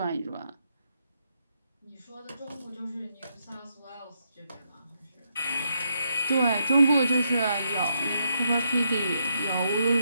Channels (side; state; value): both; inverted; correlation -0.78